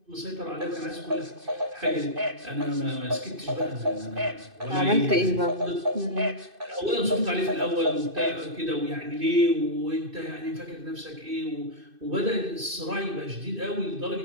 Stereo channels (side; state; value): left; late; 2.5 ms